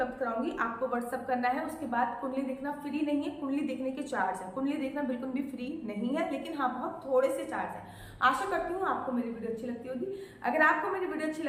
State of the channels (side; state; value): both; identical; correlation 1.00